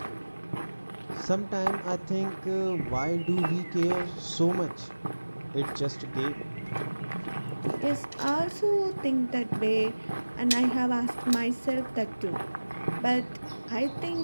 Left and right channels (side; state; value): both; inverted; correlation -1.00